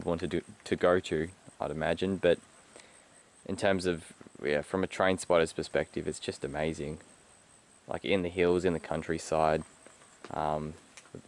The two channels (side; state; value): both; identical; correlation 1.00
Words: want to go to, I'd imagine. But in terms of, yeah, from a train spotter's perspective, it's just amazing. Like in the hills, in the countryside,